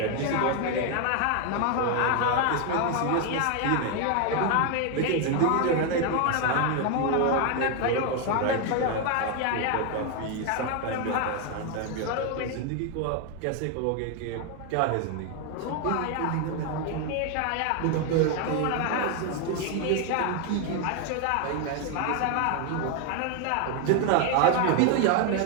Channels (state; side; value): different; both; correlation 0.01